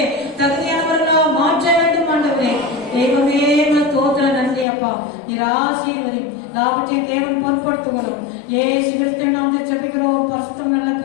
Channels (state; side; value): drops out; right; at 4.7 s